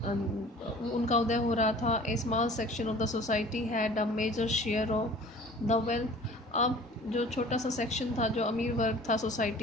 उदय हो रहा था। A small section of the society had a major share of the wealth. अब जो छोटा सा सेक्शन था, जो अमीर वर्ग था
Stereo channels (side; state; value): both; normal; correlation 0.46